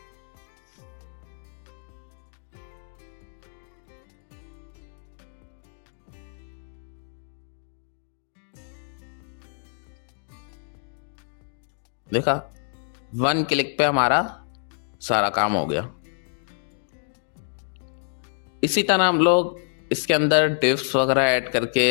देखा, 1 क्लिक पे हमारा सारा काम हो गया। इसी तरह हम लोग इसके अंदर डिफ्स वगैरह ऐड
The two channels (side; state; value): right; silent; digital silence